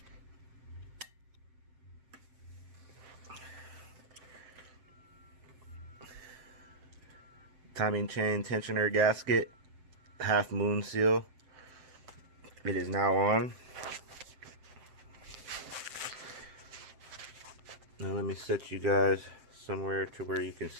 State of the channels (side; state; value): left; late; 7.7 ms